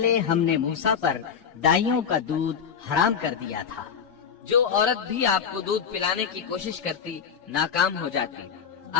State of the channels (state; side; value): quieter; right; 7.1 dB